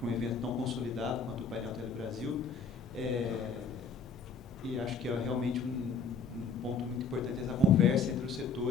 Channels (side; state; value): right; quieter; 4.4 dB